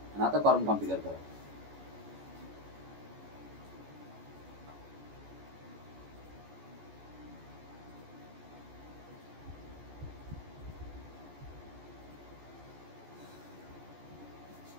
आणि आता कॉरम कॉन्फिगर करा.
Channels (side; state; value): left; late; 14 ms